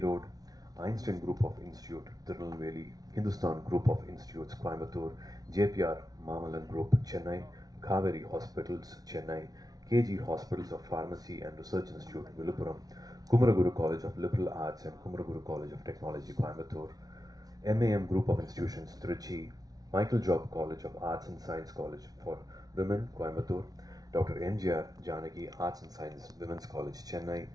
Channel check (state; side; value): late; left; 0.18 ms